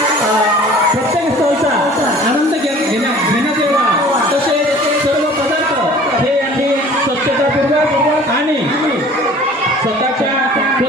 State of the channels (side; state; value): both; normal; correlation 0.47